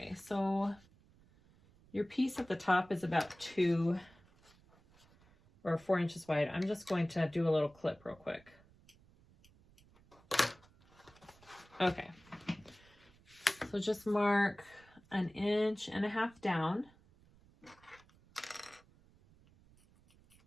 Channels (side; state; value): right; noise; rumble, 28 dB below the sound